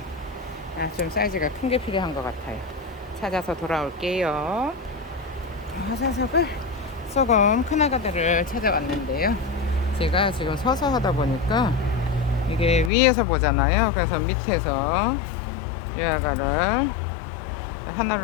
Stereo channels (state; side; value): drops out; right; at 12.9 s